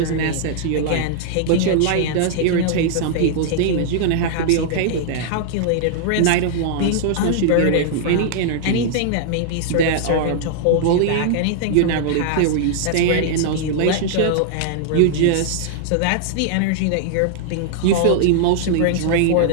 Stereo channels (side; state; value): both; different; correlation -0.01